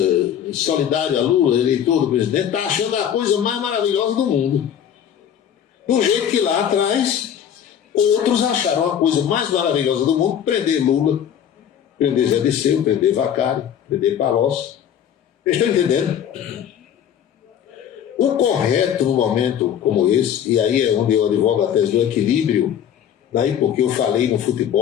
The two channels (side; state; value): right; quieter; 9.3 dB